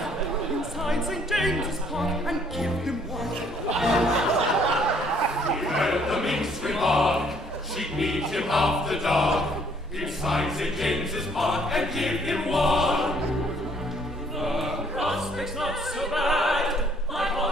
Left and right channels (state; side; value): normal; both; correlation 0.63